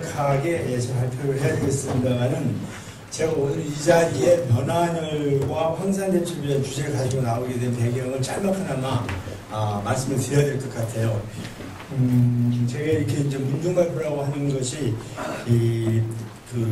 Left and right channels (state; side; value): identical; both; correlation 1.00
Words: 발표를 해야 되겠습니다만은 제가 오늘 이 자리에 변환열과 황산대첩이라는 주제를 가지고 나오게 된 배경을 짤막하나마 말씀을 드려야 될 것 같아요. 제가 이렇게 이제 문중발표라고 하는 것이